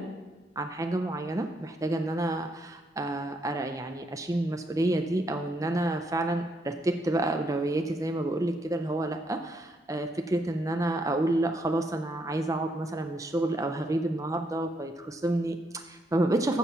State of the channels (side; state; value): both; normal; correlation 0.75